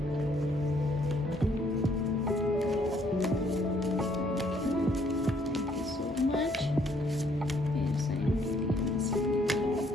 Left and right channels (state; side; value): normal; both; correlation 0.66